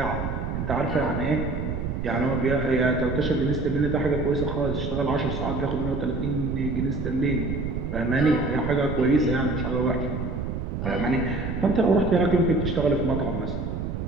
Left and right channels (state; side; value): noise; right; rumble, 4 dB below the sound